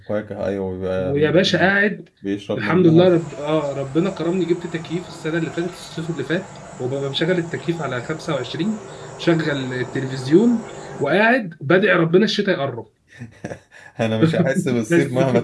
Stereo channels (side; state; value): both; identical; correlation 1.00